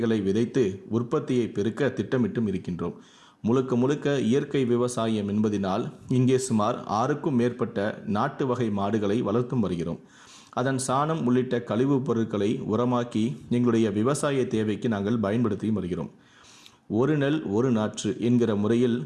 விதைத்து உற்பத்தியை பெருக்க திட்டமிட்டும் இருக்கின்றோம். முழுக்க இயற்கை விவசாயம் என்பதினால் இங்கே சுமார் 6க்கும் மேற்பட்ட நாட்டு வகை மாடுகளை வளர்த்தும் வருகிறோம். அதன் சாணம் உள்ளிட்ட கழிவுப் பொருட்களை உரமாக்கி எங்களுடைய விவசாய தேவைக்கு நாங்கள் பயன்படுத்தி வருகிறோம். ஒரு நெல் ஒரு நாற்று என்கிற முறையில்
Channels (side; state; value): both; identical; correlation 1.00